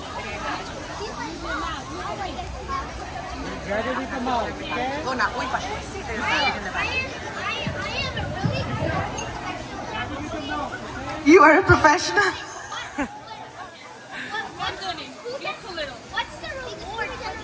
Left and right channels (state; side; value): identical; both; correlation 1.00